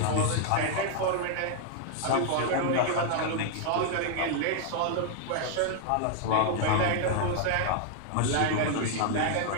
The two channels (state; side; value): different; both; correlation 0.00